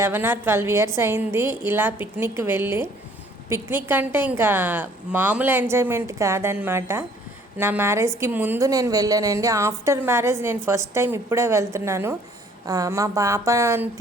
or 12 ఇయర్స్ అయింది ఇలా పిక్నిక్ వెళ్ళి. పిక్నిక్ అంటే ఇంకా మామూలు ఎంజాయ్మెంట్ కాదనమాట. నా మ్యారేజ్కి ముందు నేను వెళ్ళానండి. ఆఫ్టర్ మ్యారేజ్ నేను ఫస్ట్ టైం ఇప్పుడే వెళ్తున్నాను. మా పాపని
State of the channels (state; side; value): normal; both; correlation 0.58